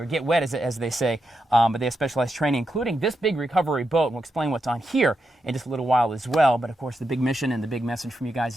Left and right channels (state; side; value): normal; both; correlation 0.85